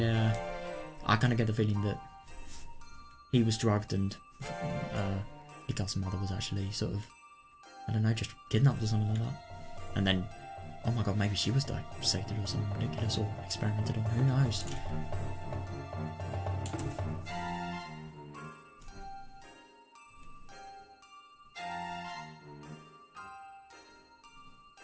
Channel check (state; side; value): identical; both; correlation 1.00